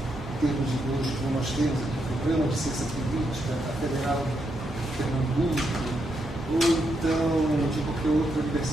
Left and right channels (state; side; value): normal; both; correlation 0.81